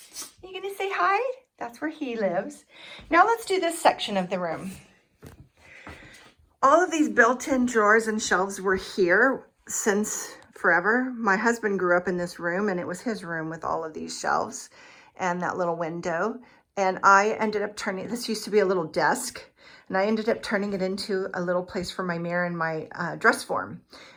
You gonna say hi? That's where he lives. Now let's do this section of the room. All of these built-in drawers and shelves were here since forever. My husband grew up in this room, and it was his room with all of these shelves and that little window. And I ended up turning, this used to be a little desk, and I ended up turning it into a little place for my mirror and my dress form.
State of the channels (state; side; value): identical; both; correlation 1.00